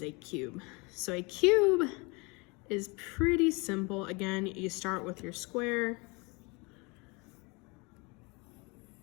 a cube. So a cube is pretty simple. Again, you start with your square.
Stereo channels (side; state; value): right; quieter; 28.3 dB